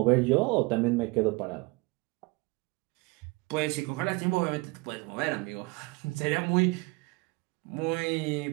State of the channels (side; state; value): left; quieter; 26.0 dB